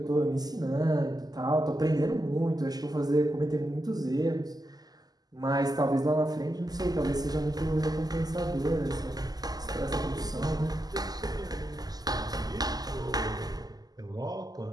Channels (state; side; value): late; left; 0.19 ms